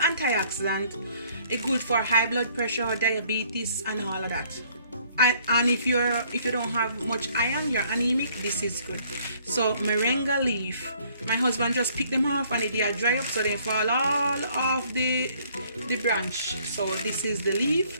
It's good for high blood pressure, diabetes, and all of that. And if you don't have much iron, you're anemic, this is good. So moringa leaf, my husband just picked them off and they are dry up, so they fall all off the branch. So this is the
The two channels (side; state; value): both; inverted; correlation -0.62